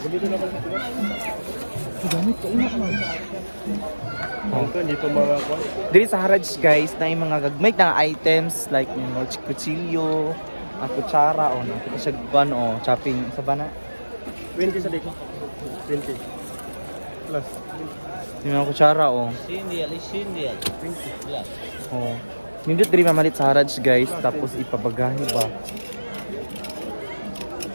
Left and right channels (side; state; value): both; inverted; correlation -1.00